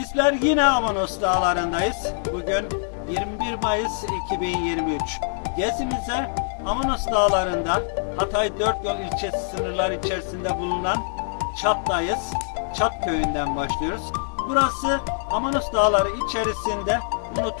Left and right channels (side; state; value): right; silent; digital silence